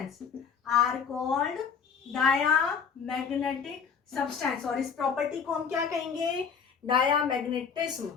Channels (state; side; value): quieter; right; 6.5 dB